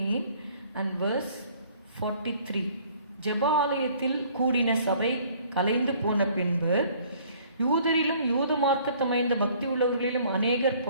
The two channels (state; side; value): inverted; both; correlation -0.57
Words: and verse 43. ஜெபாலயத்தில் கூடின சபை கலைந்து போன பின்பு யூதரிலும் யூத மார்க்கத்தமைந்த பக்தி உள்ளவர்களிலும் அநேகர்